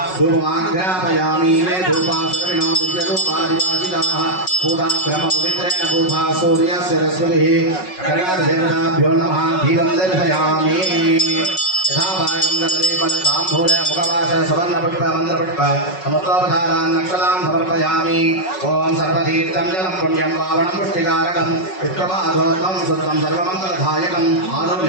धूपमाग्रापयामि मे धूपासर्विणो दिव्यरूपादिवासिताः पूजा ब्रह्मपवित्रेण पूजा सूर्यस्य रश्मिभिः कनकादेवताभ्यो नमः दीपं दर्शयामि यथा भागं गतलेपनताम्बूल मुखवास सुवर्णपुष्प मन्द्रपुष्प समुद्रोपधारान् नक्षलां समर्पयामि ओम सर्वतीर्थं जलं पुण्यं पावनं पुष्टिकारकं विष्णुपादोत्तमं सुत्रं सर्वमङ्गलदायकम्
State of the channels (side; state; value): right; late; 5.4 ms